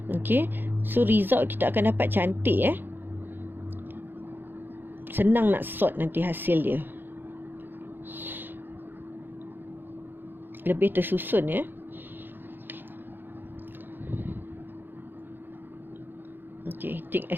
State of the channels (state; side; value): late; left; 0.097 ms